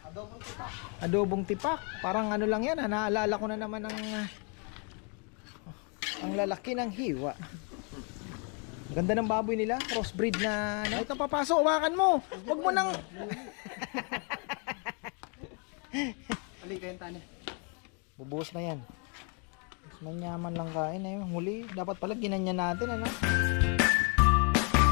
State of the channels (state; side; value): quieter; right; 37.2 dB